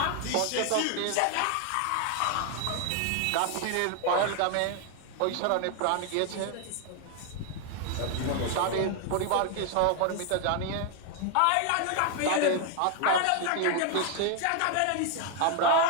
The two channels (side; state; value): both; different; correlation 0.00